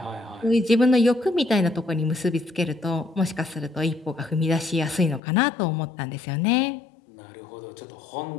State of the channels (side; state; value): right; drops out; at 5.2 s